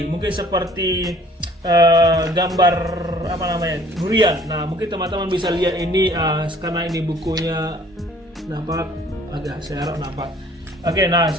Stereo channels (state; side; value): normal; both; correlation 0.54